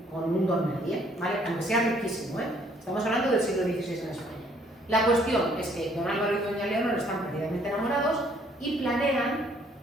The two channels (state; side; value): normal; both; correlation 0.63